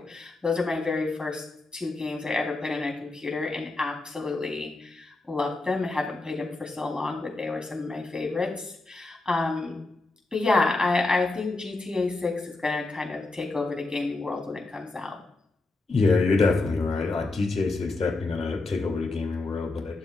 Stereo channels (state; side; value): quieter; right; 3.2 dB